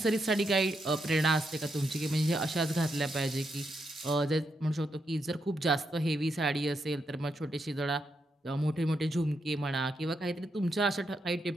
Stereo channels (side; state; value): both; normal; correlation 0.82